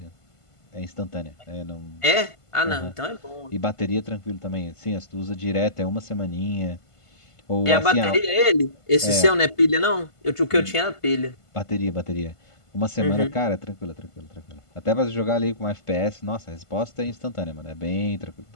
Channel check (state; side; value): late; right; 1.5 ms